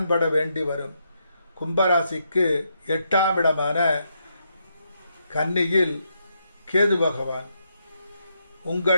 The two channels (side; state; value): both; inverted; correlation -0.79